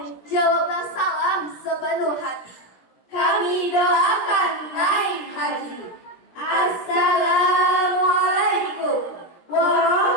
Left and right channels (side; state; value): right; late; 17 ms